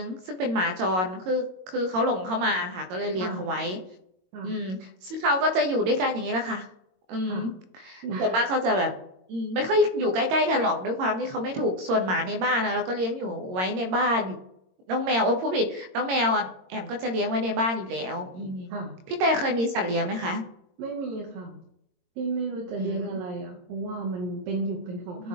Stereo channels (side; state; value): left; late; 22 ms